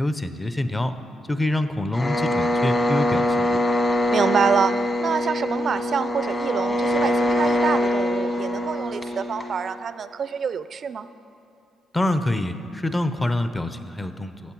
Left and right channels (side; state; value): both; normal; correlation 0.82